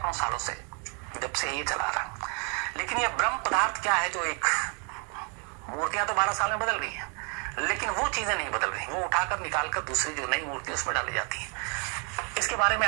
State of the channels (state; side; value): quieter; left; 36.2 dB